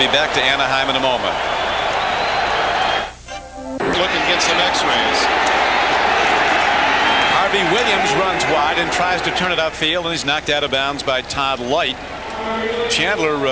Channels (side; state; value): both; identical; correlation 1.00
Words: back to Anaheim in a moment. Looking at some x-rays. Harvey Williams runs wide and tries to turn it upfield, and he's knocked out of bounds by Todd Light.